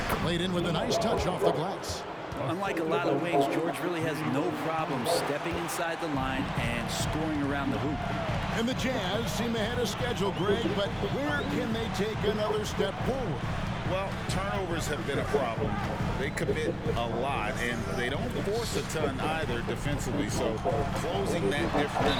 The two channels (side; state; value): both; identical; correlation 1.00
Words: Played in with a nice touch off the glass. Unlike a lot of wings, George really has no problem stepping inside the line and scoring around the hoop. And the Jazz seem ahead of schedule, Greg, but where can they take another step forward? Well, turnovers have been a problem. They commit a lot, and they don't force a ton either defensively, so closing that